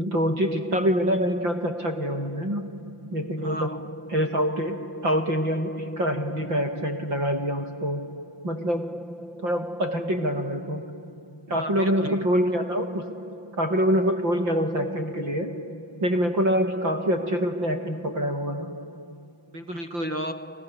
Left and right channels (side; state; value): left; late; 5.8 ms